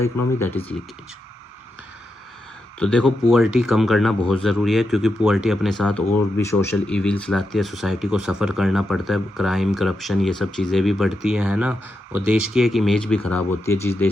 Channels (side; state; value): both; normal; correlation 0.86